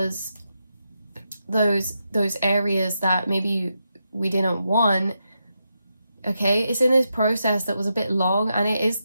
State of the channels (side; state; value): both; inverted; correlation -0.85